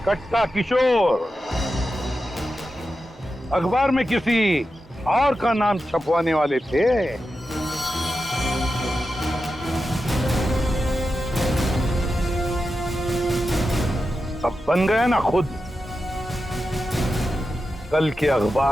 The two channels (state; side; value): normal; both; correlation 0.90